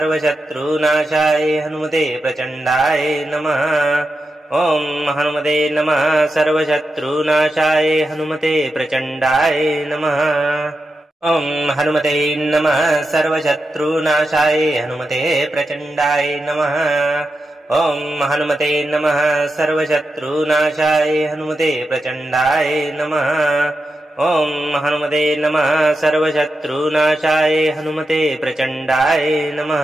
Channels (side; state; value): both; normal; correlation 0.89